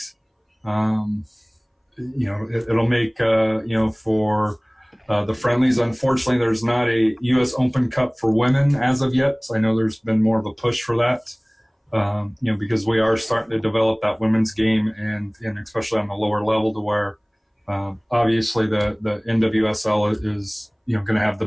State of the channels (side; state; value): both; identical; correlation 1.00